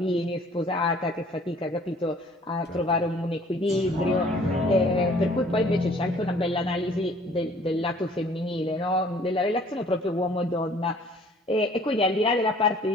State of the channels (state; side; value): normal; both; correlation 0.55